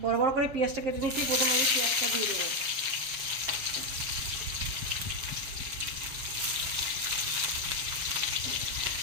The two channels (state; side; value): late; left; 7.2 ms